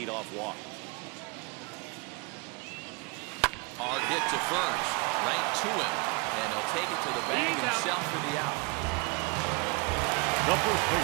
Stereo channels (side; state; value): left; quieter; 29.9 dB